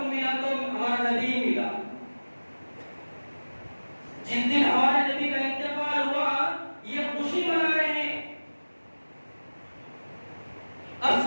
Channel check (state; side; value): inverted; both; correlation -1.00